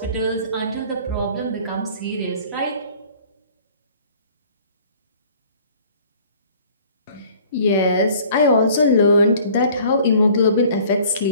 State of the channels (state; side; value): inverted; both; correlation -0.52